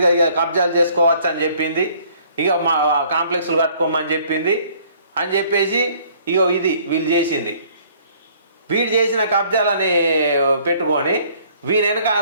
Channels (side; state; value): both; inverted; correlation -0.59